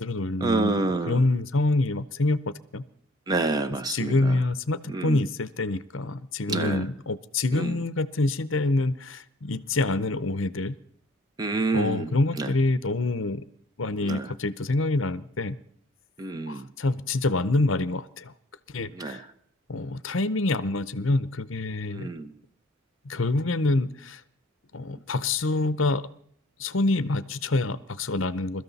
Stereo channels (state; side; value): normal; both; correlation 0.59